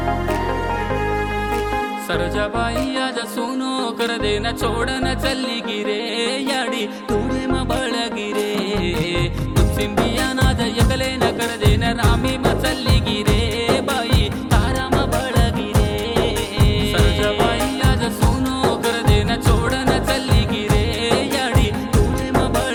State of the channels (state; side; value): identical; both; correlation 1.00